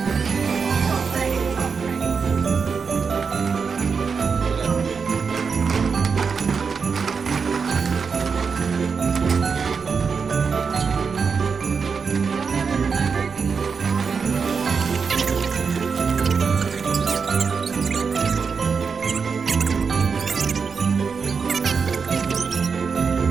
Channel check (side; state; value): left; quieter; 5.6 dB